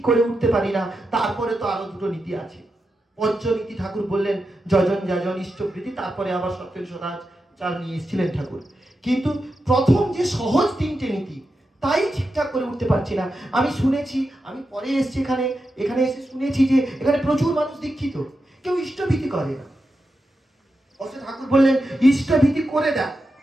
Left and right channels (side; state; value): both; normal; correlation 0.88